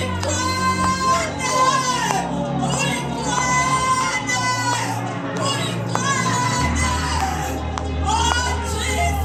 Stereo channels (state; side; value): identical; both; correlation 1.00